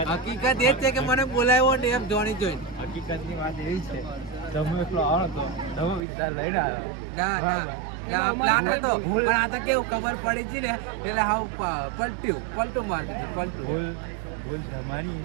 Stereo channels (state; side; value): drops out; left; at 6.0 s